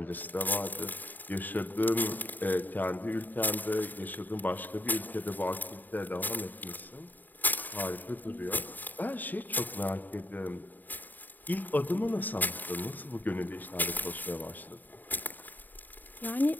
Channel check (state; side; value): late; right; 0.087 ms